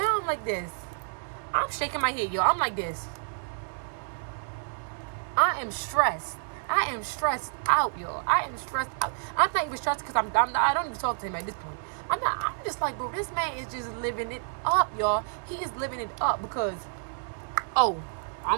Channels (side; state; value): left; silent; digital silence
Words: like this. I'm shaking my head, y'all. I'm like this. I am stressed out, y'all. I am stressed out. I'm not even stressed because I don't even talk to him at this point. I'm just like, bro, this man is just living it up, y'all. He is living it up because, oh, I